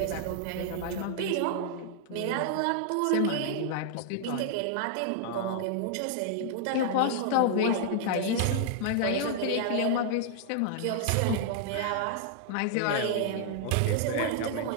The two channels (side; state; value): both; different; correlation -0.01